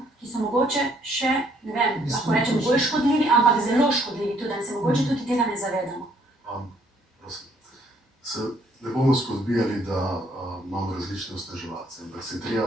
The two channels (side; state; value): both; normal; correlation 0.65